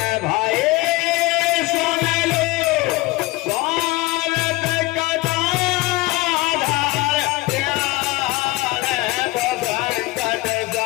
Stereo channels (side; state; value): right; quieter; 20.8 dB